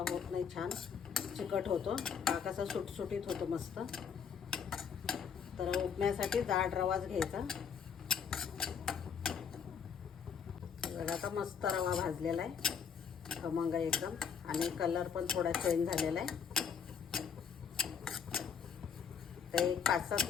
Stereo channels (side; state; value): right; quieter; 7.0 dB